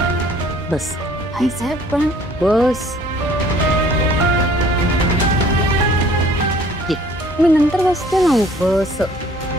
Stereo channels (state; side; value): normal; both; correlation 0.55